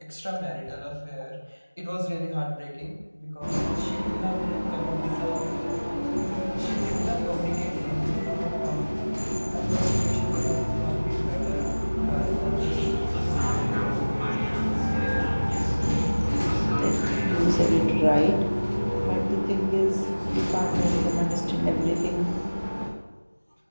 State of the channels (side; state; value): both; inverted; correlation -1.00